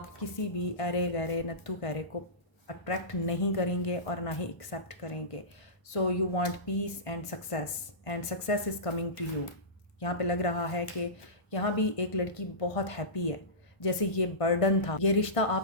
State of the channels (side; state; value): right; late; 1.5 ms